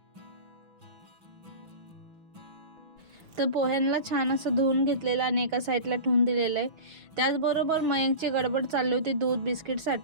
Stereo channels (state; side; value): late; left; 6.2 ms